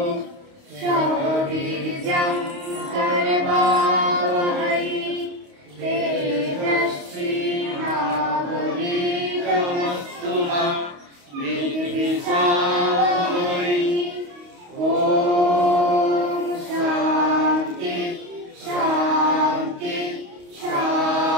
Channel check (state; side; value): late; left; 28 ms